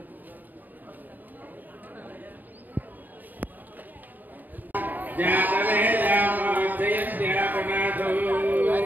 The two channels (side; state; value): left; late; 0.086 ms